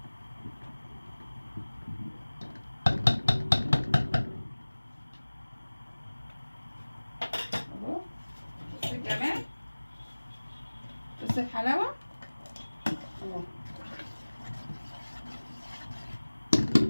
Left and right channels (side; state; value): both; inverted; correlation -1.00